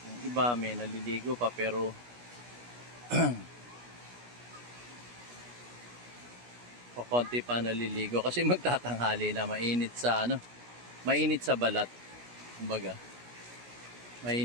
iba may naliligo pa pero o konti pa naliligo kasi magtatanghali na, mainit sa ano, mainit sa balat. Kumbaga,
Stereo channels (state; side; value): late; left; 17 ms